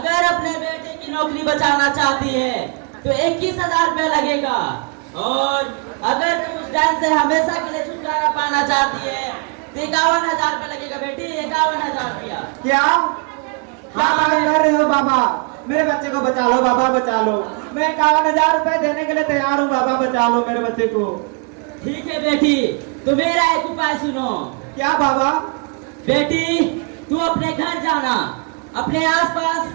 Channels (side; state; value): left; quieter; 36.6 dB